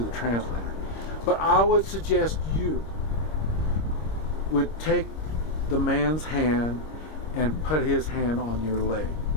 the translator, but I would suggest you would take the man's hand and put his hand on your leg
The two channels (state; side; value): late; right; 26 ms